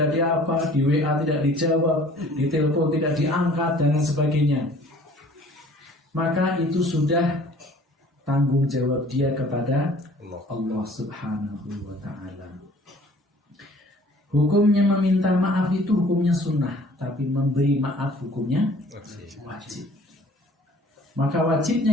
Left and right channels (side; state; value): both; normal; correlation 0.52